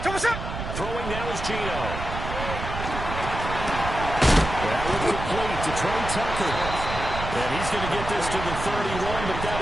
Throwing now is Gino. That would complete to Trey Tucker. And he's going to get this to the 31, but that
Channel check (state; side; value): noise; right; rumble, 6 dB below the sound